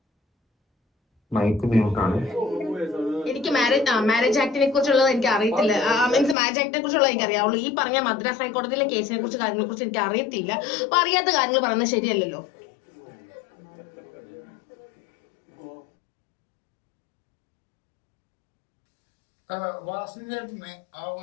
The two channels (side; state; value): right; drops out; at 6.4 s